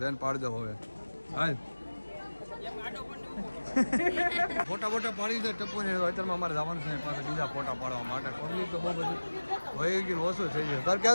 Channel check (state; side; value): inverted; both; correlation -1.00